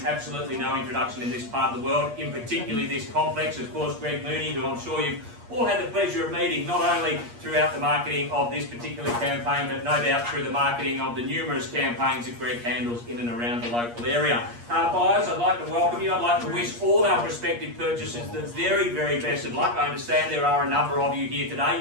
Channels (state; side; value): late; left; 8.5 ms